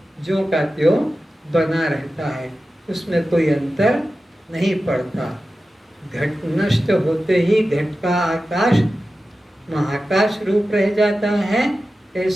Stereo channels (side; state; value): both; normal; correlation 0.94